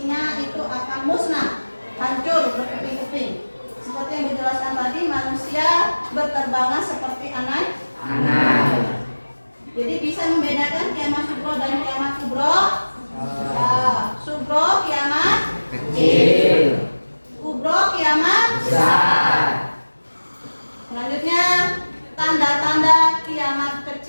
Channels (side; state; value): both; inverted; correlation -1.00